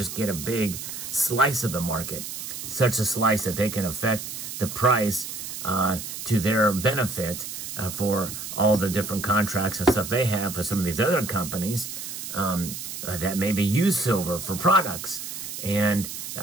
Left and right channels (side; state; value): right; noise; hiss, 8 dB below the sound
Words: get a big slice of the market, such a slice that they can affect the price to their benefit for all the different contracts and stuff they have for some of these other companies that maybe use silver for products. And,